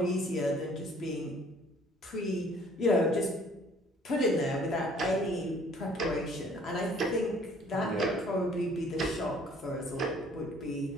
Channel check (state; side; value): normal; both; correlation 0.57